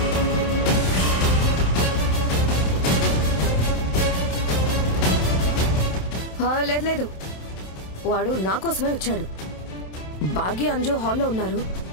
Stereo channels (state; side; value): late; right; 27 ms